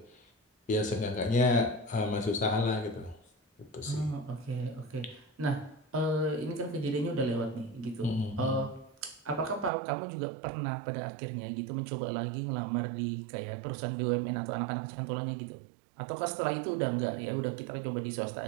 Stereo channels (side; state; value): left; drops out; at 9.7 s